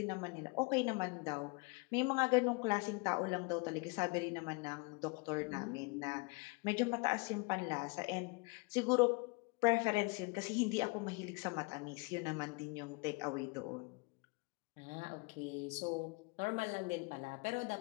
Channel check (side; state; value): right; quieter; 28.6 dB